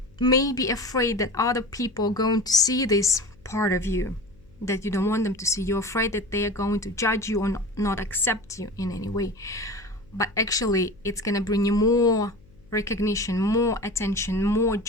may be afraid that other people are going to see this part of you that you don't want them to see. You're afraid that they are going to judge you or not accept you in any way. But actually, it's going to bring you more recognition, more attention, more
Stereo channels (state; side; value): noise; left; hum, 27 dB below the sound